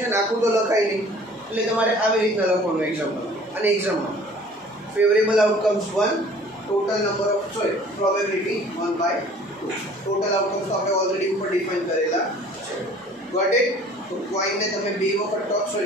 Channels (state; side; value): normal; both; correlation 0.50